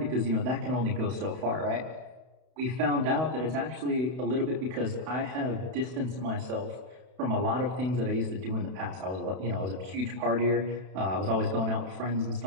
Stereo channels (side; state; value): left; late; 32 ms